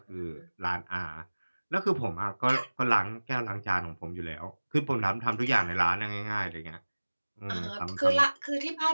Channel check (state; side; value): inverted; both; correlation -1.00